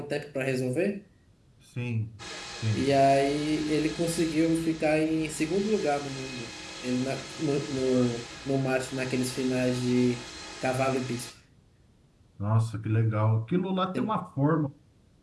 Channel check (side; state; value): both; identical; correlation 1.00